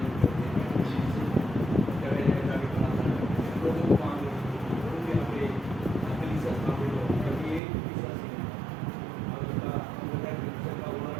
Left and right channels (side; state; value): left; drops out; at 7.6 s